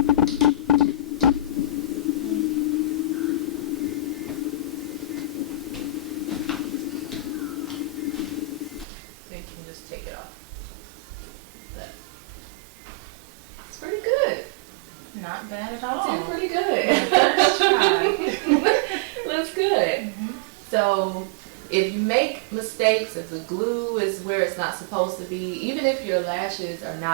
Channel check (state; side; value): drops out; left; at 8.8 s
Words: So you can just take it off. It's pretty good. Not bad at all. It's pretty good. First try. Looks good. So if you make mistakes, if the glue is where it's not supposed to be, even if your lashes are